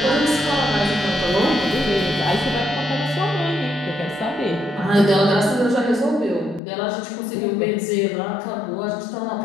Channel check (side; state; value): right; drops out; at 6.6 s